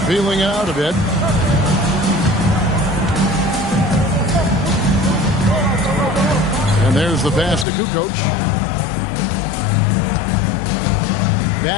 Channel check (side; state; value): right; drops out; at 7.7 s